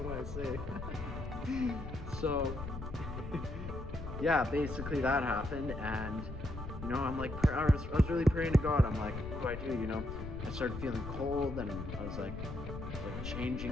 I say? So, yeah, basically that happened, and I'm like, I was really praying to God. I'm like, what do I do? I started feeling cold, and I was like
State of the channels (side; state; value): left; noise; rumble, 9 dB below the sound